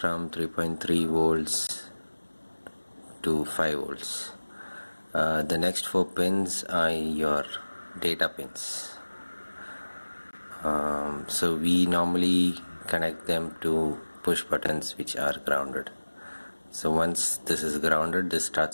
3.3 volts to 5 volts. The next 4 pins are your data pins. So we normally connect them to push buttons which are grounded. So once this is grounded, this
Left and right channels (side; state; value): both; inverted; correlation -1.00